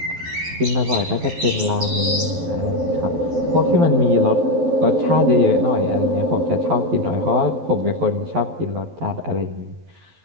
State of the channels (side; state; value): left; late; 12 ms